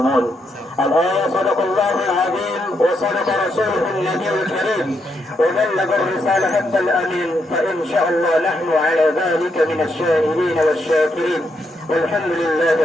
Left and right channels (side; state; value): both; normal; correlation 0.79